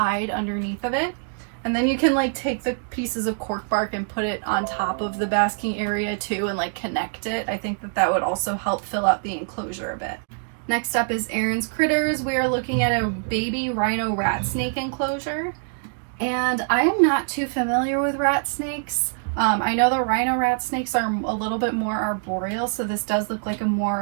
underneath of it. And then you can take the pieces of cork bark and put it on top of the basking area too and connect it. I think that would also help fill out the enclosure a bit. Next up is Aaron's Critters. We are looking at a baby rhino rat snake enclosure. And I am not too familiar with rat snakes. I know the rhino rat snakes are a little bit more arboreal, so this does look like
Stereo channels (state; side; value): silent; left; digital silence